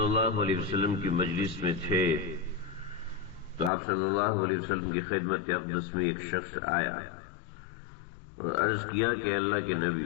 اللہ علیہ وسلم کی مجلس میں تھے تو آپ صلی اللہ علیہ وسلم کی خدمت اقدس میں ایک شخص آیا اور عرض کیا کہ اللہ کے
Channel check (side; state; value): right; drops out; at 3.7 s